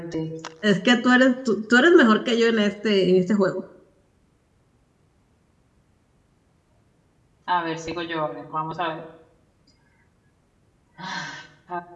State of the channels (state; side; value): identical; both; correlation 1.00